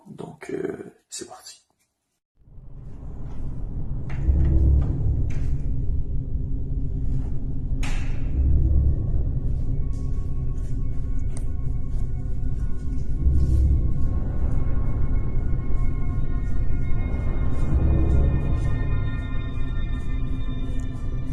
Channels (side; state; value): both; identical; correlation 1.00